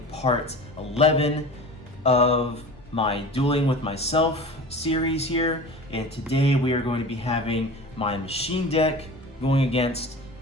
part 11 of my Dueling with Myself series here, and today we are going to be having my machine deck going against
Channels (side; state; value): both; normal; correlation 0.36